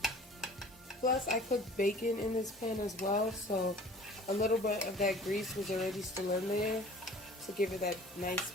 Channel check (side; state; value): both; normal; correlation 0.47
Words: Plus, I cooked bacon in this pan as well, so a little bit of that grease was already still in there to give it that nice